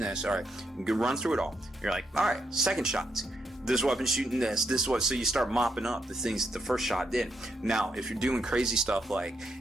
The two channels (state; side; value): normal; both; correlation 0.79